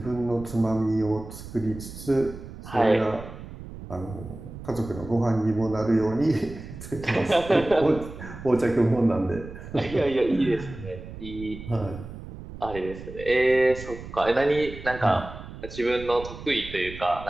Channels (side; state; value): right; noise; rumble, 13 dB below the sound